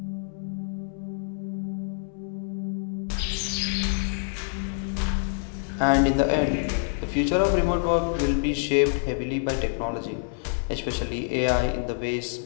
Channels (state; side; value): silent; right; 60 dB below the other